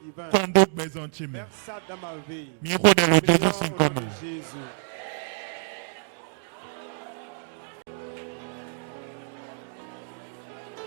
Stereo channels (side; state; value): left; silent; digital silence